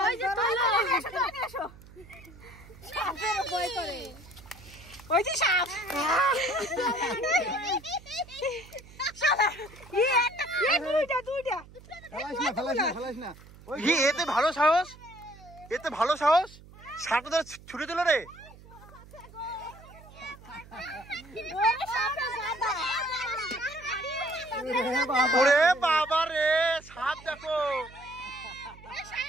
ওই যে তোলো সাপের ভয় করে, ওই যে সাপ। দুইটা ফেলাস না এতে ভালো সাহস, এতে ভালো সাহস, সাপটা ধরে ছুটে দিল রে। ওরে বাবা রে, সাপ দেখো,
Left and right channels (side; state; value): right; noise; hum, 21 dB below the sound